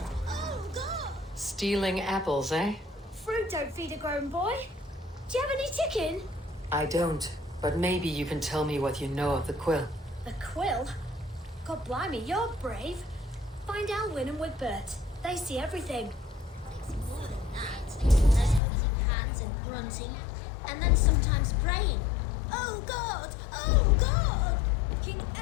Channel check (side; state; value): right; drops out; at 18.6 s